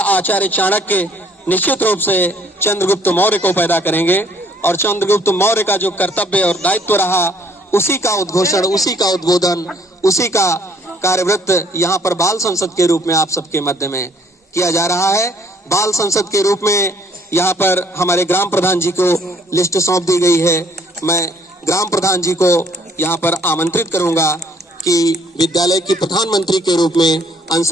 चाणक्य निश्चित रूप से चंद्रगुप्त मौर्य को पैदा करेंगे। और चंद्रगुप्त मौर्य का जो कर्तव्य और दायित्व रहा, उसी का उद्घोषण, उसी का उद्बोधन, उसी का कार्यवृत्त यहाँ पर बाल संसद के रूप में आप सबके मध्य में किया जा रहा है। बाल संसद के रूप में यहाँ पर हमारे ग्राम प्रधान जी को लिस्ट सौंप दी गई है। मैं ग्राम प्रधान जी को यहाँ पर आमंत्रित करूंगा कि विद्यालय की प्रधानमंत्री के रूप में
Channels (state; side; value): normal; both; correlation 0.61